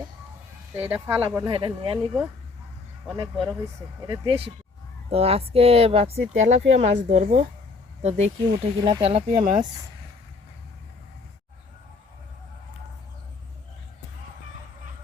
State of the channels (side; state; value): right; quieter; 4.0 dB